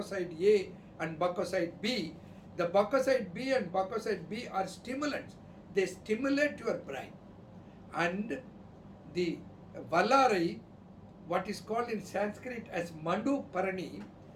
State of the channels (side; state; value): both; identical; correlation 1.00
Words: A and Bacoside B. The Bacoside B and Bacoside B are stimulants. They stimulate your brain. And the Valarai, what is called in Sanskrit as Mandu Parani,